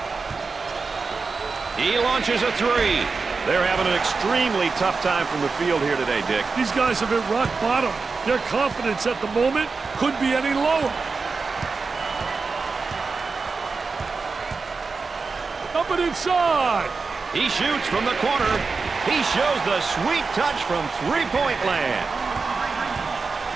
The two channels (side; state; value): left; quieter; 4.5 dB